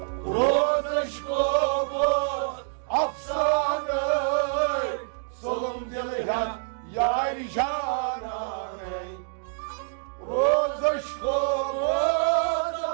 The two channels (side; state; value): left; silent; digital silence